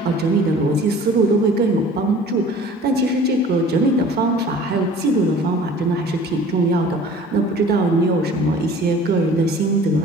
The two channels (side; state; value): both; normal; correlation 0.47